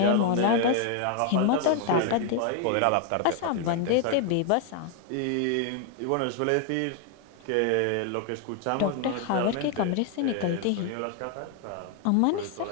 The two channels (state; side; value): different; both; correlation 0.00